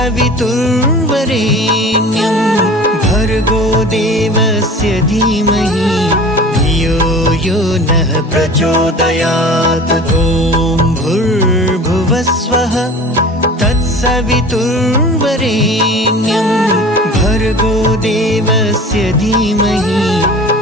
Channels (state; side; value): normal; both; correlation 0.40